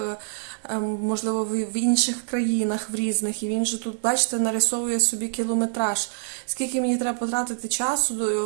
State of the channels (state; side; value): silent; left; digital silence